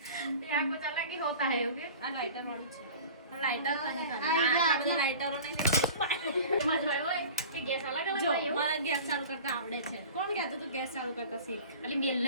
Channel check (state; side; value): inverted; both; correlation -0.40